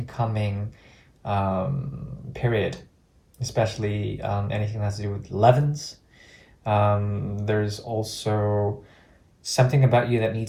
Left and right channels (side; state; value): both; identical; correlation 1.00